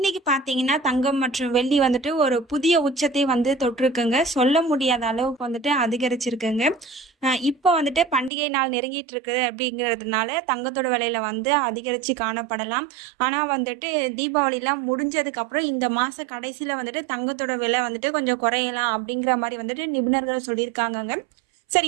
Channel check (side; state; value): left; drops out; at 8.3 s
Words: பார்த்தீங்கன்னா தங்கம் மற்றும் வெள்ளி வந்துட்டு ஒரு புதிய உச்சத்தை தொட்டிருக்குங்க. சொல்ல முடியாத அளவுக்கு அதிகரிச்சிருக்குங்க. இப்போ பண்டிகை நாள் நெருங்கிட்டு இருக்குது அப்படிங்கிறதுனால தங்கத்தோட விலையில அதிகரித்து காணப்படலாம். ஆனால் தீபாவளிலாம் முடிஞ்சதுக்கப்புறம் இந்த மாத கடைசியில் தங்கத்தோட விலை கொஞ்சம் குறையலாம் அப்படிங்கிற மாதிரி நிபுணர்கள் சொல்லியிருக்காங்கங்க.